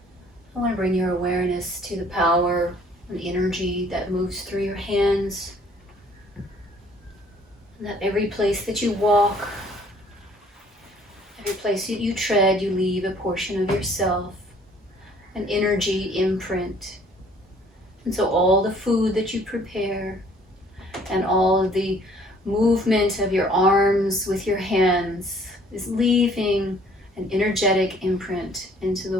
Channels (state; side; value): normal; both; correlation 0.58